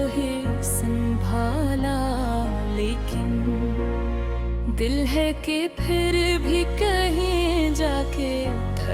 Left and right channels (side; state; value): both; identical; correlation 1.00